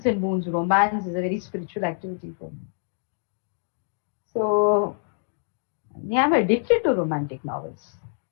and Moon's romance is a very spiritual activity for me. So yeah, I'm addicted to romantic novels.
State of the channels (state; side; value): silent; right; digital silence